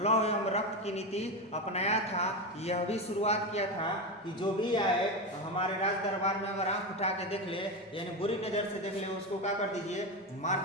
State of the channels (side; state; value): both; normal; correlation 0.16